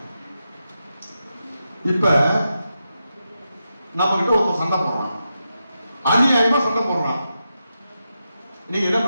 இப்ப நம்ம கிட்ட ஒருத்தர் சண்டை போடுறான், அநியாயமா சண்டை போடுறான். நீங்க என்ன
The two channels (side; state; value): both; inverted; correlation -0.87